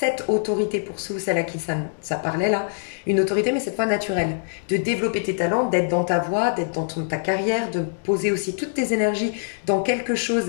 autorité, pour ceux ou celles à qui ça parlait là, une autorité mais cette fois naturelle, de développer tes talents, d'être dans ta voie, d'être dans ta carrière, de poser aussi toutes tes énergies dans quelque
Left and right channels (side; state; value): right; silent; digital silence